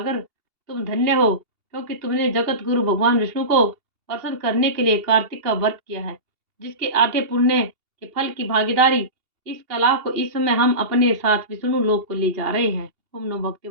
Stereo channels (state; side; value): late; left; 2.8 ms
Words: तुम धन्य हो, क्योंकि तुमने जगत गुरु भगवान विष्णु को प्रसन्न करने के लिए कार्तिक का व्रत किया है, जिसके आधे पुण्य के फल की भागीदारी इस कला को इस समय हम अपने साथ विष्णु लोक को ले जा रहे हैं। ओम नमो भगवते